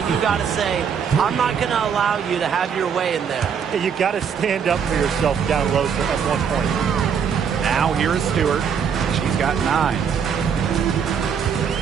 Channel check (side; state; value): left; quieter; 7.2 dB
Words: you got to say, I'm not going to allow you to have your way in there. Yeah, you got to stand up for yourself down low at one point. Now here is Stewart. She's got 9.